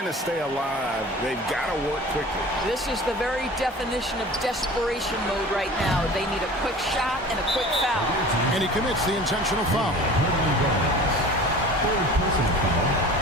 to stay alive. They've got to work quickly. This is the very definition of desperation mode right now. They need a quick shot and a quick foul. And he commits the intentional foul. Third personal foul.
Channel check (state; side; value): normal; both; correlation 0.41